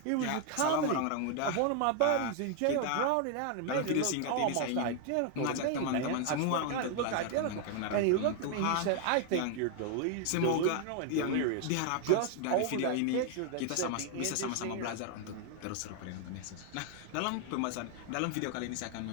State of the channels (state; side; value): different; both; correlation 0.00